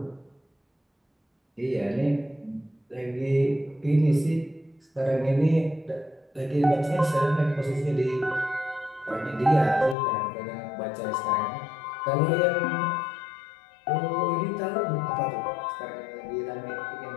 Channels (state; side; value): drops out; right; at 10.0 s